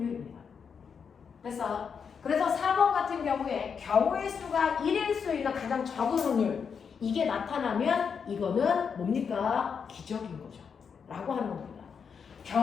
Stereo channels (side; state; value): right; quieter; 6.4 dB